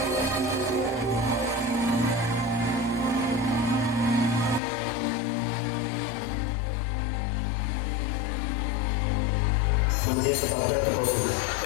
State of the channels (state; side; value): drops out; right; at 4.6 s